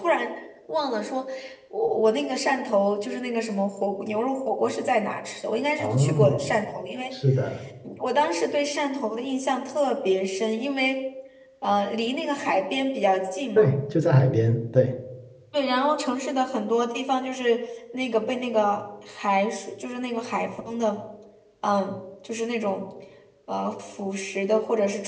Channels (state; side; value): identical; both; correlation 1.00